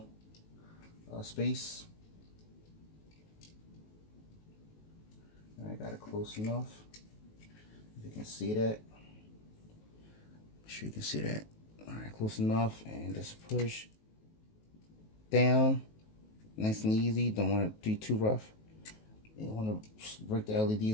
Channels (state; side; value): late; right; 19 ms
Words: space. I got it close enough. If you can see that. Make sure you can see that. Alright, close enough, and just push down. Nice and easy. Don't want to do too rough. You want to break the